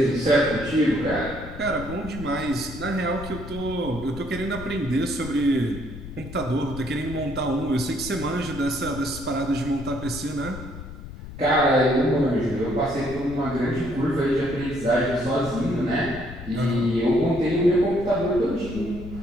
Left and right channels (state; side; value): noise; left; rumble, 12 dB below the sound